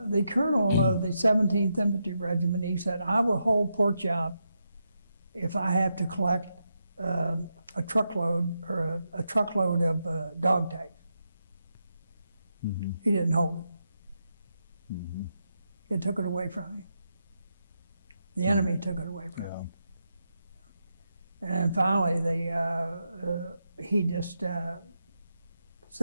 colonel of the 17th Infantry Regiment, he said, "I will hold Port Chop if I have to collect a truckload or a truckload of dog tags. Mm-hmm. He didn't hold it. Mm-hmm. It took it away from him. The enemy took it away from him. And finally, he just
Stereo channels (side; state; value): both; inverted; correlation -0.84